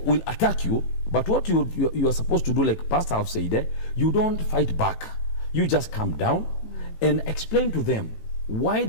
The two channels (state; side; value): late; right; 18 ms